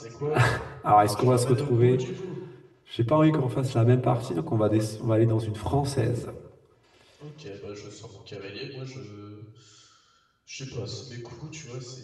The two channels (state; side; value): identical; both; correlation 1.00